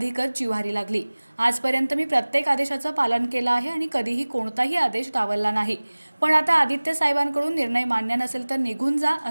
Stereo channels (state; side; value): inverted; both; correlation -1.00